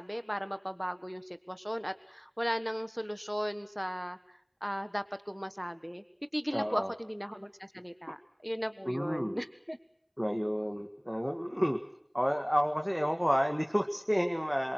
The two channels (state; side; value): identical; both; correlation 1.00